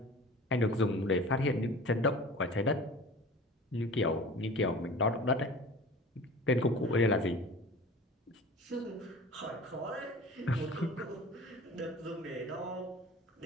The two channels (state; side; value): normal; both; correlation 0.41